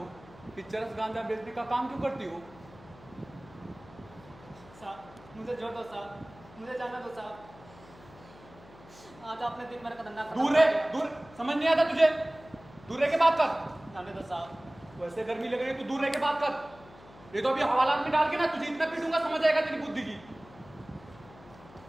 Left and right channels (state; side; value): noise; left; hum, 22 dB below the sound